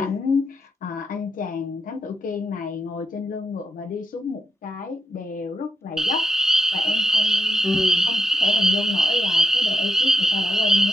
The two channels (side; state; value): both; normal; correlation 0.81